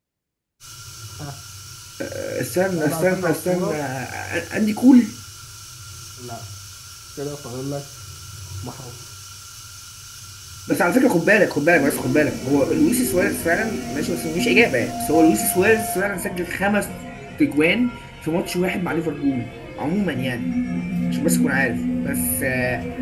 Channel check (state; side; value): identical; both; correlation 1.00